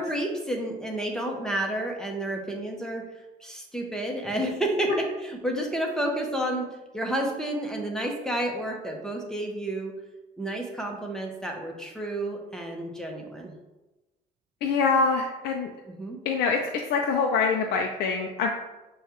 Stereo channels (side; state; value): both; normal; correlation 0.34